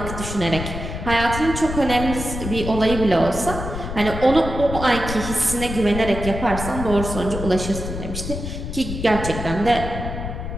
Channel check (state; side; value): noise; left; rumble, 6 dB below the sound